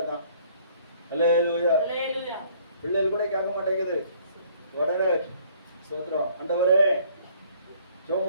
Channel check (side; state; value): both; inverted; correlation -0.60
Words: அல்லேலூயா. பிள்ளைகள் கூட கேட்க மாட்டேங்குது. உடனே சோதரம், ஆண்டவரே